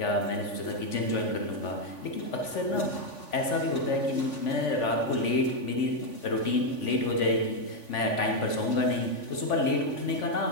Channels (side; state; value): right; late; 3.5 ms